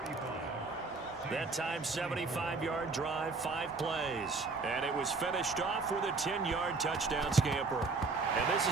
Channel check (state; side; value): quieter; left; 3.9 dB